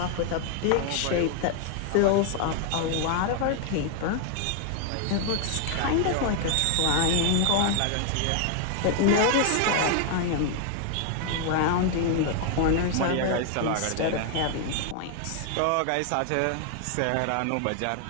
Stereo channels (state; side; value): different; both; correlation 0.00